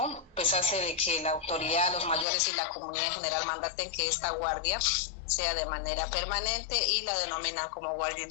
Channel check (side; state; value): right; drops out; at 2.2 s